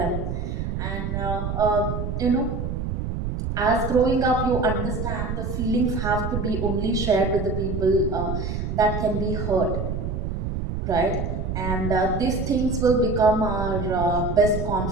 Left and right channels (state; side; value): noise; right; rumble, 3 dB below the sound